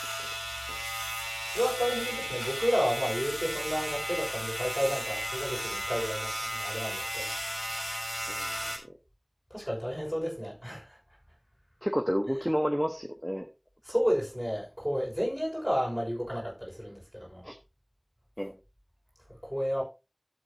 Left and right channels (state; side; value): identical; both; correlation 1.00